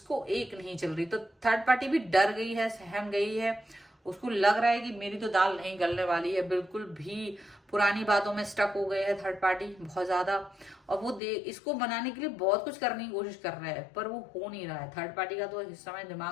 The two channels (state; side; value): drops out; right; at 11.2 s